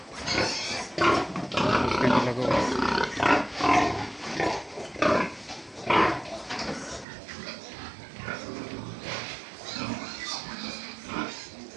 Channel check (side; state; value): left; drops out; at 7.1 s